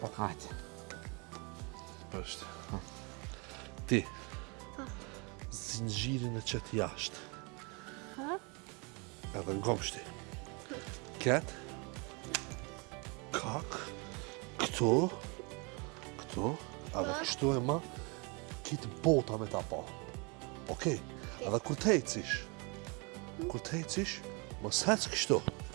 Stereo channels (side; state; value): left; quieter; 31.4 dB